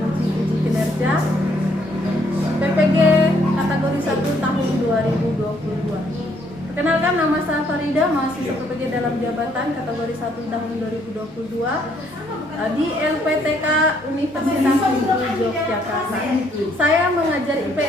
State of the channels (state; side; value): normal; both; correlation 0.68